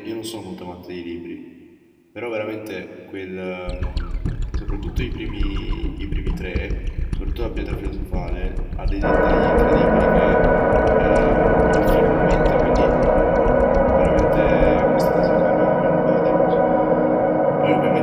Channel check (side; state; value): both; identical; correlation 1.00